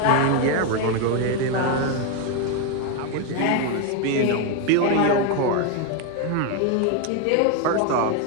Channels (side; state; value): both; different; correlation 0.01